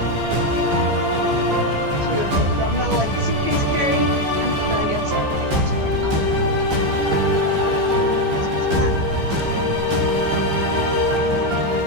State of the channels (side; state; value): left; late; 15 ms